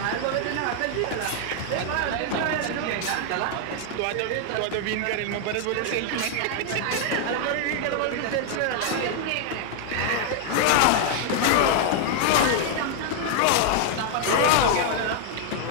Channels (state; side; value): different; both; correlation 0.00